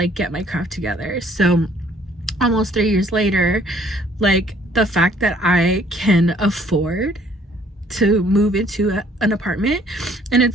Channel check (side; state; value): both; normal; correlation 0.60